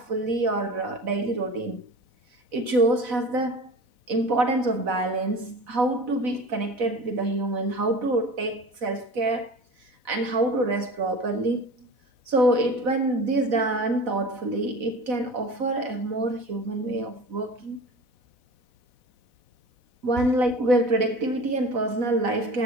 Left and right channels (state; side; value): late; left; 4.1 ms